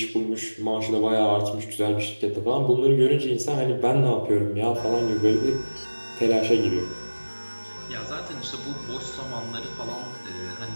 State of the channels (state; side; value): inverted; both; correlation -1.00